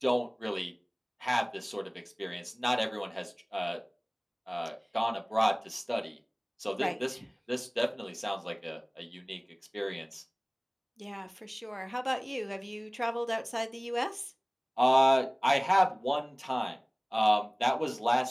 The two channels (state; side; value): identical; both; correlation 1.00